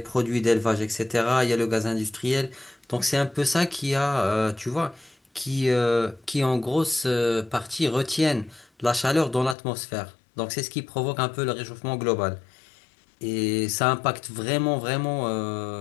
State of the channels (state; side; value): drops out; right; at 9.6 s